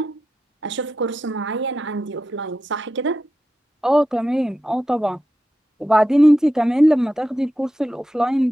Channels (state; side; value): normal; both; correlation 0.90